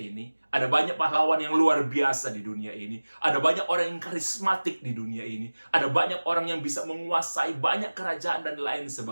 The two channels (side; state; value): both; inverted; correlation -1.00